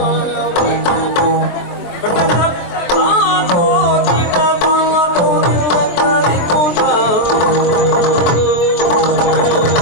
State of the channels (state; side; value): late; right; 23 ms